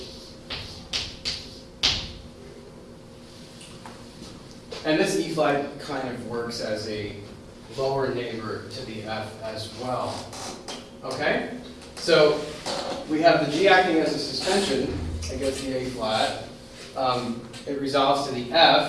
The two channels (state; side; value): identical; both; correlation 1.00